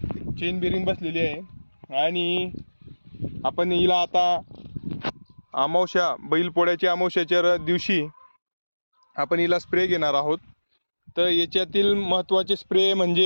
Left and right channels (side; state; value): both; inverted; correlation -1.00